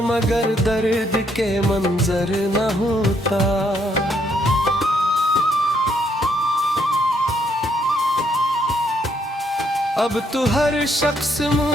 मगर दर्द के मंजर न होता। अब तो हर शख्स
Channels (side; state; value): both; normal; correlation 0.72